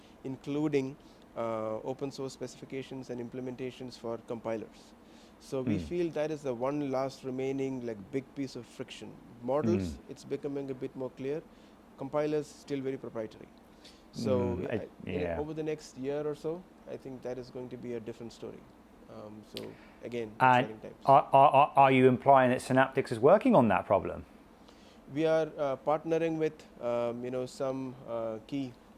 Including open source specifications and implementations for compilers. So we feel that is the one last remaining big piece of friction. Models, it's becoming a bit more clear. Compilers, still very proprietary. So over the next year or so, I think that is going to be a different story. So again, exciting times. Are you implying that Synaptics is working on that problem? We are partnering with some key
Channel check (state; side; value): identical; both; correlation 1.00